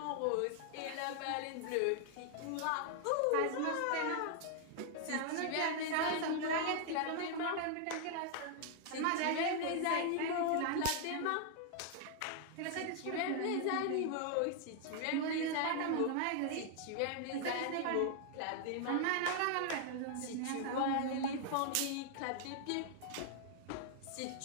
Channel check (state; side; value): different; both; correlation 0.00